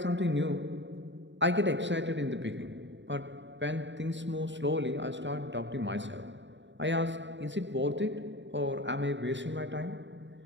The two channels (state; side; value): late; left; 0.53 ms